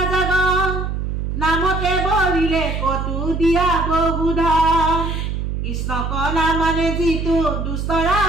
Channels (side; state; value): right; noise; hum, 3 dB below the sound